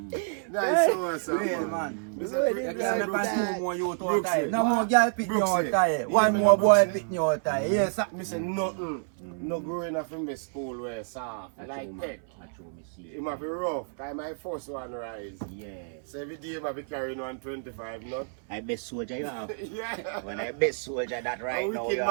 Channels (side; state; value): left; silent; 59 dB below the other